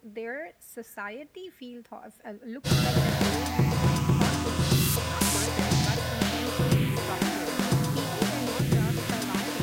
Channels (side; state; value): both; identical; correlation 1.00